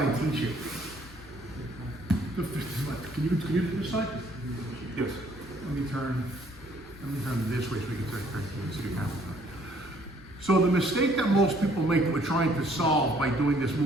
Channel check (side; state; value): left; noise; hum, 21 dB below the sound